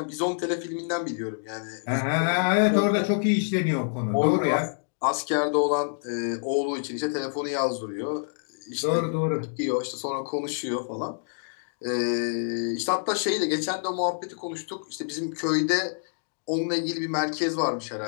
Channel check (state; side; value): silent; right; digital silence